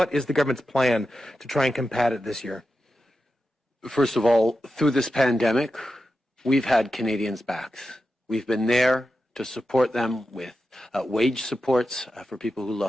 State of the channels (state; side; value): normal; both; correlation 0.90